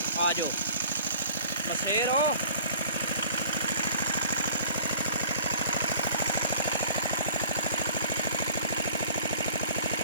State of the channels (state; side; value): inverted; both; correlation -0.48